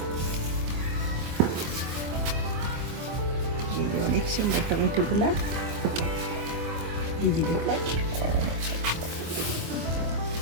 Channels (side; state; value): left; late; 25 ms